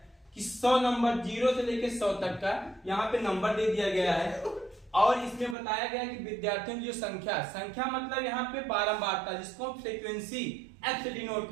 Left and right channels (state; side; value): drops out; left; at 5.6 s